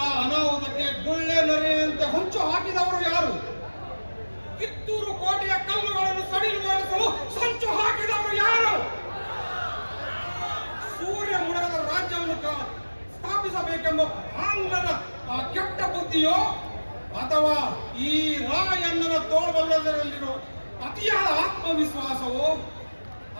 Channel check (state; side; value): inverted; both; correlation -1.00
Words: ಅನಾಹುತಕ್ಕೆ ಗುಳ್ಳೆ ನರಿಯಂತೆ ಹೊಂಚು ಹಾಕಿದವರು ಯಾರು? ಕಿತ್ತೂರು ಕೋಟೆಯ ಕಲ್ಲುಗಳನ್ನು ಸಡಿಲುಗೊಳಿಸಲು ಸಂಚು ಹಾಕಿದವರು ಯಾರು? ಸೂರ್ಯ ಮುಳುಗದ ರಾಜ್ಯವನ್ನು ಸ್ಥಾಪಿಸಬೇಕೆಂಬ ಆಂಗ್ಲರ ಆ ಕೆಟ್ಟ ಬುದ್ಧಿಯೋ, ಅಥವಾ ಈ ರಾಯಣ್ಣನ ತೋಳ್ಬಲ್ಲದರಲ್ಲಿರೋ ಅತಿಯಾದ ಆತ್ಮವಿಶ್ವಾಸವೋ,